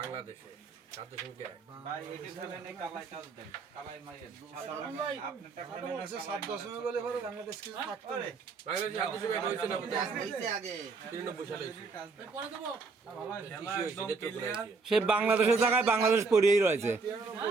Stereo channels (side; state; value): left; quieter; 4.4 dB